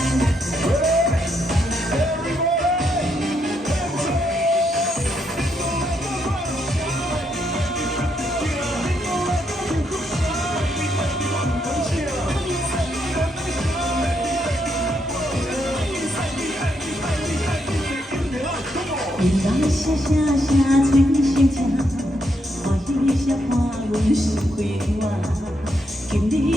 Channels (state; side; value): normal; both; correlation 0.78